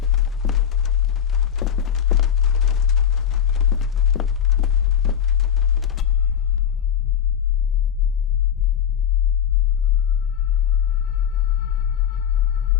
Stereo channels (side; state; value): right; quieter; 8.6 dB